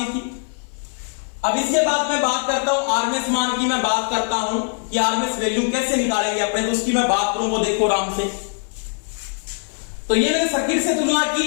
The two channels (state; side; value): silent; right; 65 dB below the other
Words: थी। अब इसके बाद मैं बात करता हूं आरएमएस मान की, मैं बात करता हूं कि आरएमएस वैल्यू कैसे निकालेंगे अपने, तो उसकी मैं बात करूं, वो देखो आराम से। तो ये मैंने सर्किट से तुलना